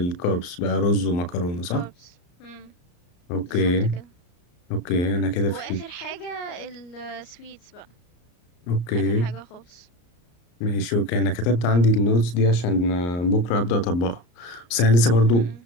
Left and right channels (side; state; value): right; late; 34 ms